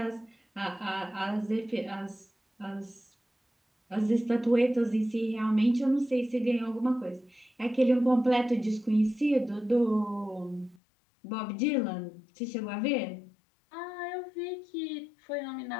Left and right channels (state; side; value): drops out; right; at 10.8 s